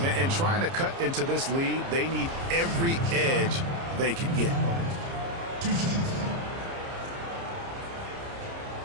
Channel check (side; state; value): left; late; 30 ms